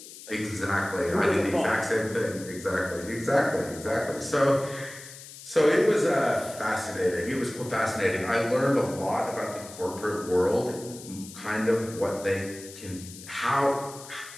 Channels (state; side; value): noise; left; hiss, 16 dB below the sound